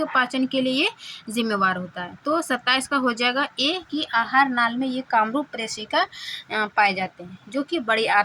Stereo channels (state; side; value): identical; both; correlation 1.00